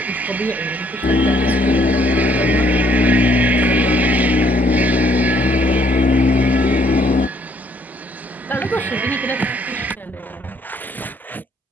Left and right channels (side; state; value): both; normal; correlation 0.67